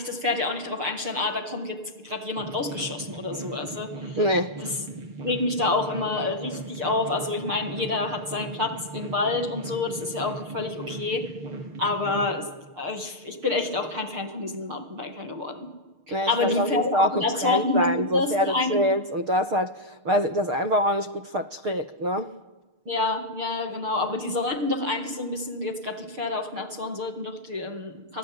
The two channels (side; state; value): left; late; 6.6 ms